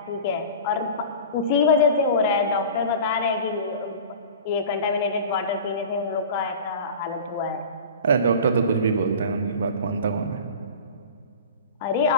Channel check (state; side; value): inverted; both; correlation -0.36